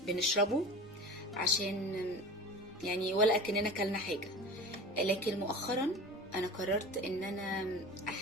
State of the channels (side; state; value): both; normal; correlation 0.35